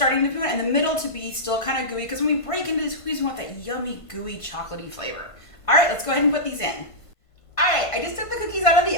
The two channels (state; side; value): late; right; 1.5 ms